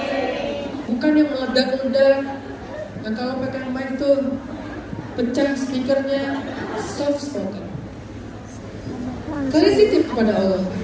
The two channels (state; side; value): identical; both; correlation 1.00